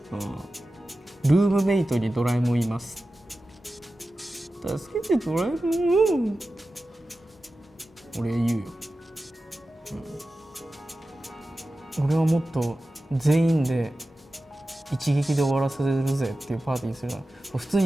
ルームメイトにドラえもんいます、助けてドラえもん、俺言うよ、俺はもっと全員で一撃で終わらせるぜっていうパーティーするのは普通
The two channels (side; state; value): both; normal; correlation 0.94